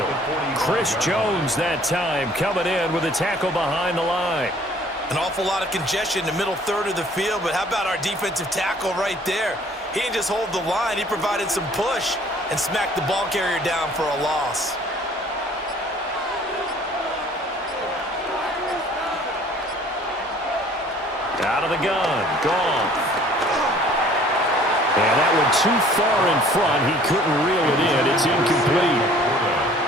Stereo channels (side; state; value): both; normal; correlation 0.54